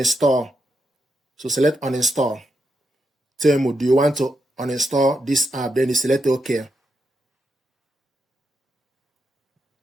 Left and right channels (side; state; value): both; normal; correlation 0.83